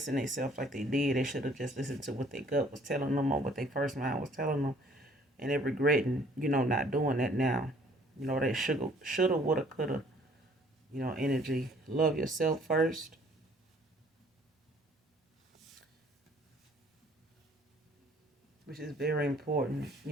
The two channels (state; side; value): normal; both; correlation 0.58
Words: themselves like they did. They should have just listened to what their gut was telling them or what their first mind was telling them, and they're regretting, not doing that now. That shoulda, woulda, coulda, energy. Love yourself first. Which is very important,